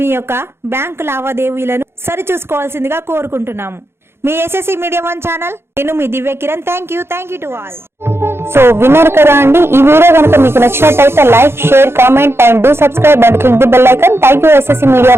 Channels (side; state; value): left; late; 0.12 ms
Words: యొక్క బ్యాంకు లావాదేవీలను సరిచూసుకోవాల్సిందిగా కోరుకుంటున్నాము. మీ ఎస్ఎస్సి మీడియా 1 ఛానల్, నేను మీ Divya Kiran. Thank you to all. So విన్నారు కదా అండి. ఈ వీడియో కనుక మీకు నచ్చినట్టయితే like, share, comment and do subscribe and click the bell icon. Thank you SSC media